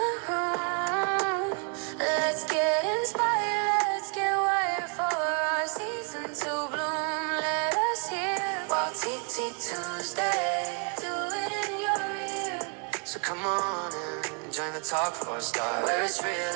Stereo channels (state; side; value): quieter; left; 35.9 dB